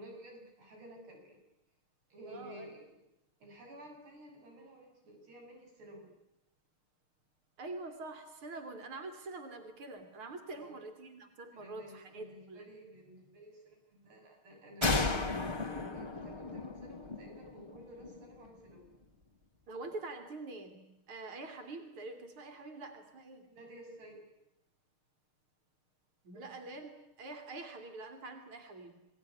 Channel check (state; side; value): late; left; 6.5 ms